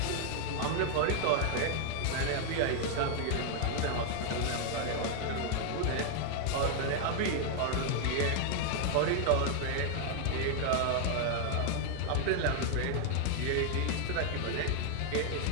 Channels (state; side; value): different; both; correlation 0.00